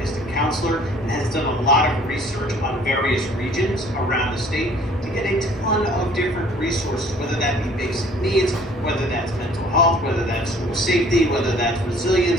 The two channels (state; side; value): normal; both; correlation 0.55